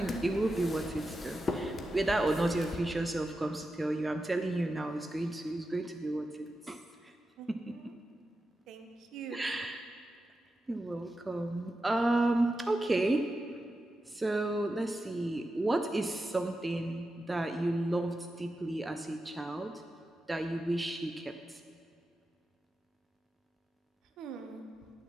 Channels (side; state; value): both; normal; correlation 0.90